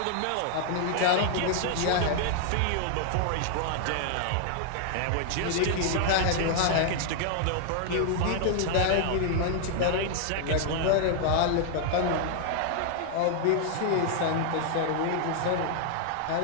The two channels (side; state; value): both; different; correlation 0.00